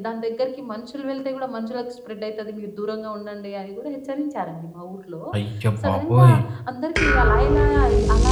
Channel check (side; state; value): both; identical; correlation 1.00